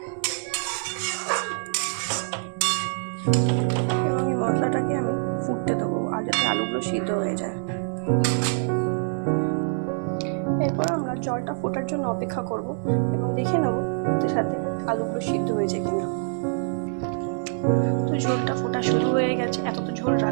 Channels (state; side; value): silent; left; digital silence